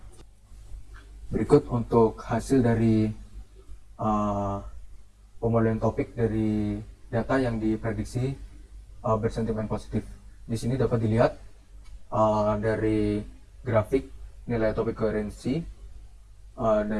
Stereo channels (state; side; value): identical; both; correlation 1.00